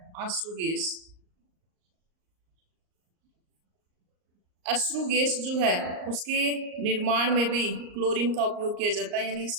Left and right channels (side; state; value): left; late; 38 ms